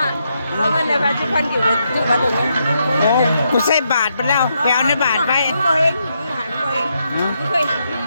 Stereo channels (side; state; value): both; inverted; correlation -0.80